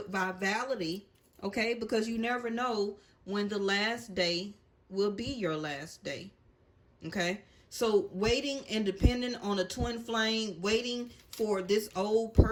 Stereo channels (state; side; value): identical; both; correlation 1.00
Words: vitality, okay? Because you never know when the last day will be your last day, okay? So waiting and depending on a twin flame, waiting for this old